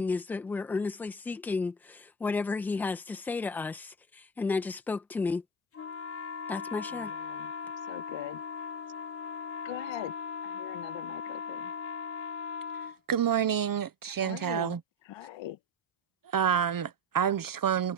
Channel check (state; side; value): normal; both; correlation 0.18